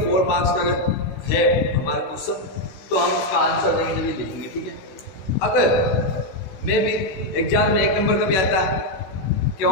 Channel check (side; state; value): right; late; 16 ms